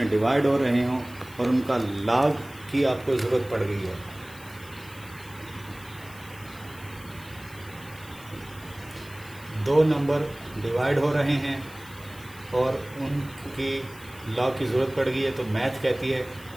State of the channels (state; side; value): noise; left; hiss, 20 dB below the sound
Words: डिवाइड हो रहे हों और उनका लॉग की आपको ज़रूरत पड़ गई है, दो नंबर डिवाइड हो रहे हैं और उनकी लॉग की ज़रूरत पड़ गई है, तो मैथ कहती है